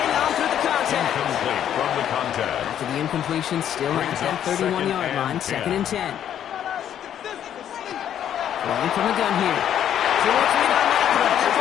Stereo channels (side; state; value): right; quieter; 10.1 dB